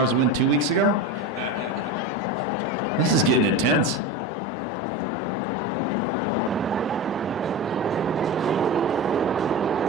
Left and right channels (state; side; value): normal; both; correlation 0.24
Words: to win 2 weeks ago? This is getting intense.